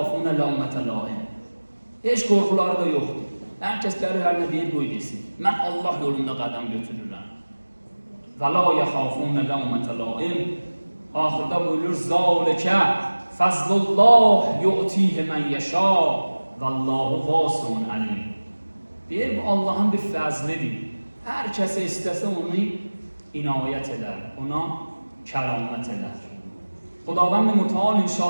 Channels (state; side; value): inverted; both; correlation -1.00